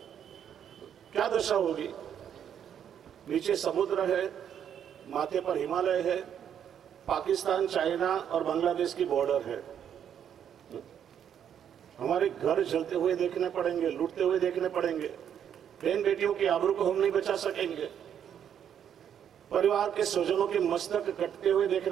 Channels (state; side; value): quieter; left; 9.0 dB